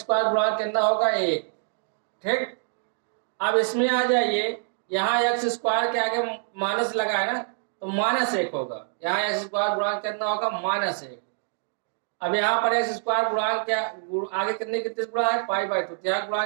गुणांक कितना होगा, 1। ठीक, अब इसमें आ जाइए, यहाँ x² के आगे माइनस लगा है ना, तो -1 होगा। यहाँ x² गुणांक कितना होगा, -1। अब यहाँ पर x² गुणांक क्या आगे कितने गिनती से गुणा है, π/2। तो यहाँ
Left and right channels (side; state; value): left; silent; digital silence